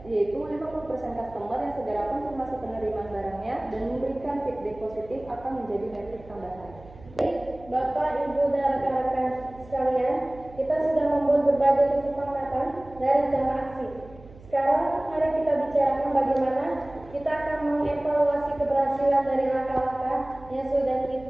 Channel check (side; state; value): right; noise; hum, 21 dB below the sound